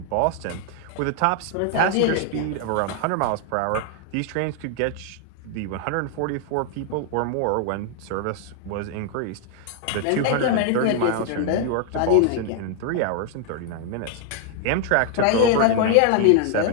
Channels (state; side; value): different; both; correlation 0.00